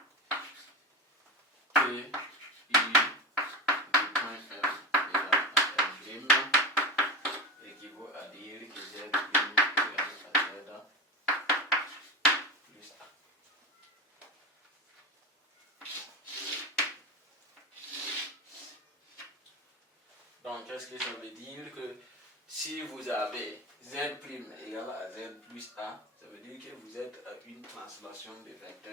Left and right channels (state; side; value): normal; both; correlation 0.22